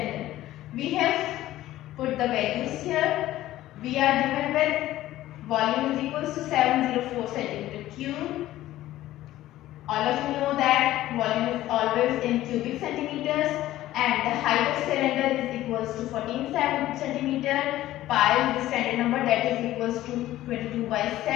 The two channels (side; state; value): right; quieter; 14.8 dB